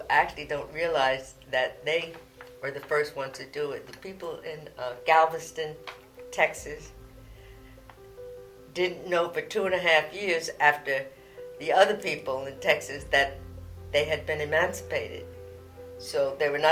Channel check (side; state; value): both; identical; correlation 1.00